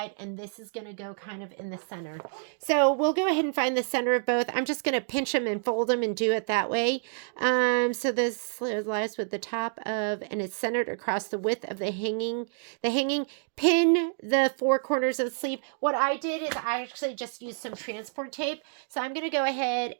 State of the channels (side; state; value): left; silent; digital silence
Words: and this is going to go kind of in the center. So we'll go ahead and find the center of both. I'm just going to pinch them and fold them and do it that way. So this lies with the top of, and it's centered across the width of the hanging. Pin the four corners of the sleeve. What I did is I actually just used some transport tape. So I'm going to go ahead